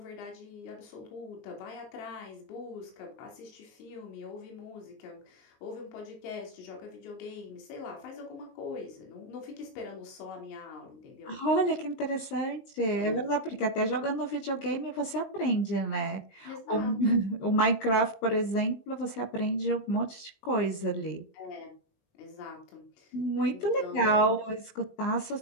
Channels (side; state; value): right; late; 19 ms